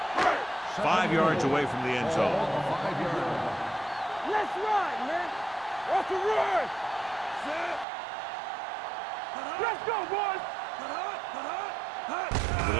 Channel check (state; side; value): drops out; left; at 7.9 s